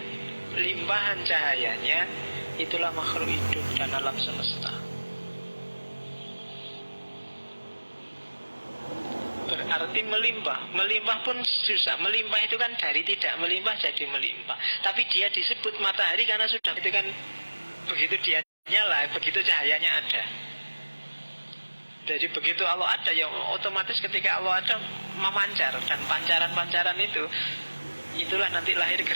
limpahan cahayanya, itulah makhluk hidup dan alam semesta. Berarti melimpah pun susah. Melimpah itu kan dari tidak melimpah jadi melimpah. Tapi dia disebut matahari karena sudah itu kan begitu dia nyala, begitu cahayanya ada. Jadi begitu Allah ada, ya otomatis ketika Allah ada memancar, dan pancaran-pancaran itu, itulah nanti lahir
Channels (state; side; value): inverted; both; correlation -1.00